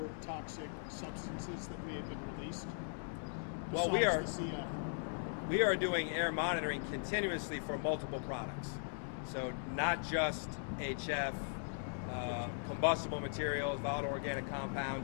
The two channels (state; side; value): silent; right; digital silence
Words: toxic substances that may have been released? Well, besides the CF? we are doing air monitoring continuously for multiple products. So not just HF, combustible materials, volatile organic